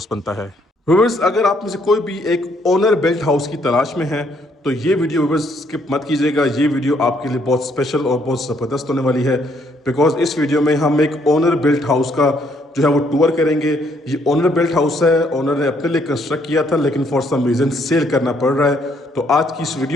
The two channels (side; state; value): both; normal; correlation 0.69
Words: बनता है। व्यूअर्स, अगर आप में से कोई भी एक ओनर बिल्ट हाउस की तलाश में है तो ये वीडियो व्यूअर्स स्किप मत कीजिएगा। ये वीडियो आपके लिए बहुत स्पेशल और बहुत ज़बरदस्त होने वाली है, बिकॉज इस वीडियो में हम एक ओनर बिल्ट हाउस का जो है वो टूर करेंगे। ये ओनर बिल्ट हाउस है, ओनर ने अपने लिए कंस्ट्रक्ट किया था, लेकिन फॉर सम रीज़न सेल करना पड़ रहा है। तो आज की इस